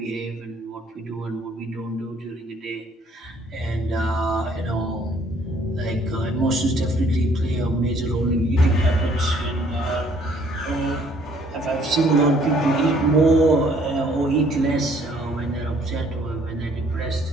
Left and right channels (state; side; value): normal; both; correlation 0.61